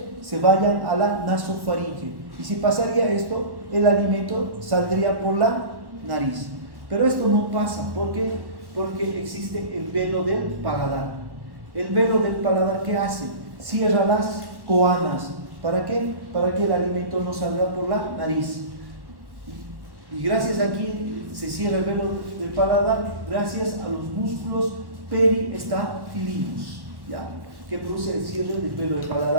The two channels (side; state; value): left; late; 1.1 ms